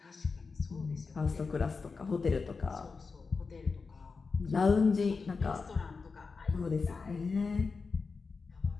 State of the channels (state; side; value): quieter; right; 4.6 dB